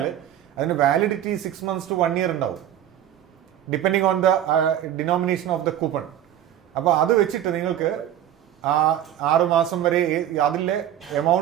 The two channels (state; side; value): quieter; left; 11.1 dB